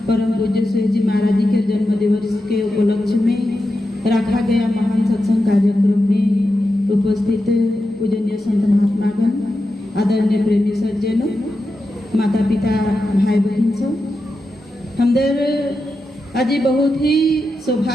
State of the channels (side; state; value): both; normal; correlation 0.90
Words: परम पूज्य सुहेज जी महाराज जी के जन्म दिवस के उपलक्ष्य में रखा गया महान सत्संग कार्यक्रम में उपस्थित पूजनीय संत महात्मागण, आदरणीय प्रेमी सज्जनों, माता पिता, भाई बहन सब हमदर आज बहुत ही